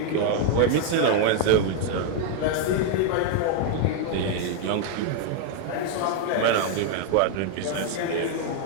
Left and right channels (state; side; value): different; both; correlation 0.00